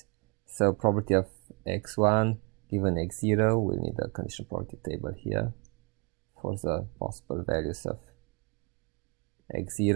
So probability of x1 given x0, we'll need a conditional probability table here for the possible values of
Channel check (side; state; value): left; quieter; 30.1 dB